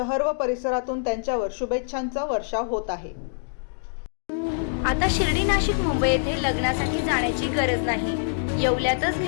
व परिसरातून त्यांच्यावर शुभेच्छांचा वर्षाव होत आहे. आता शिर्डी, नाशिक, मुंबई येथे लग्नासाठी जाण्याची गरज नाही. येवल्यातच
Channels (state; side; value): silent; right; digital silence